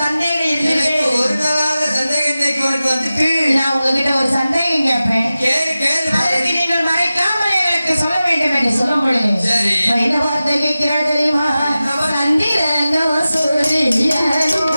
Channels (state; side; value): inverted; both; correlation -0.95